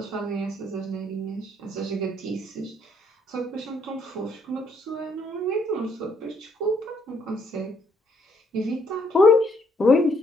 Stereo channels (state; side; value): normal; both; correlation 0.69